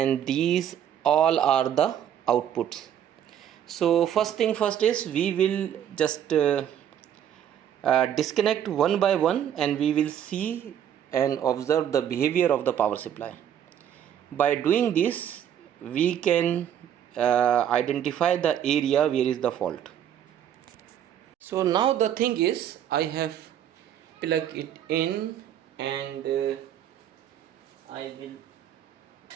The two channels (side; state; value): left; quieter; 9.9 dB